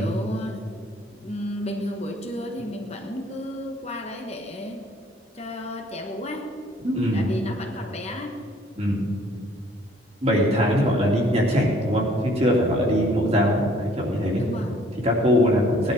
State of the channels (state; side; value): normal; both; correlation 0.58